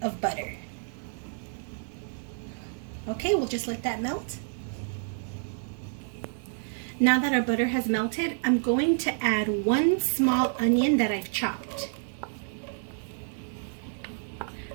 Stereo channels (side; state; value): left; silent; 58 dB below the other